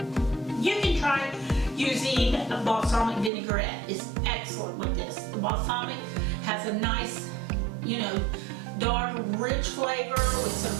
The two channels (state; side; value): drops out; left; at 3.3 s